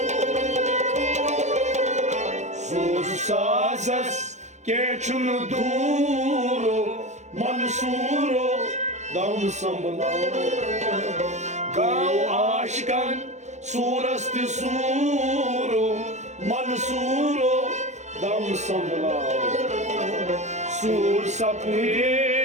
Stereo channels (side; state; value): left; late; 0.33 ms